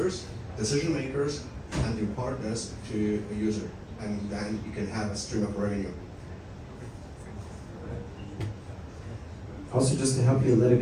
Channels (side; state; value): both; identical; correlation 1.00